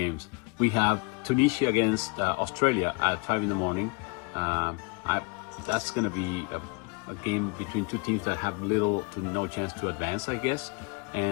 We have Tunisia against Australia at 5 in the morning. That's going to be a game between 2 teams that have little to no chance to advance, I guess.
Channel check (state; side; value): quieter; right; 30.4 dB